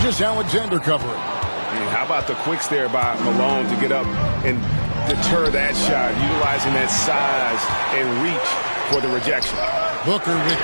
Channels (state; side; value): inverted; both; correlation -1.00